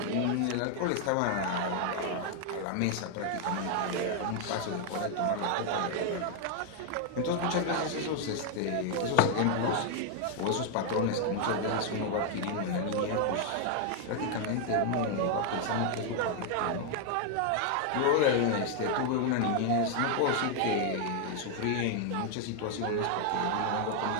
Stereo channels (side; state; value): both; different; correlation 0.00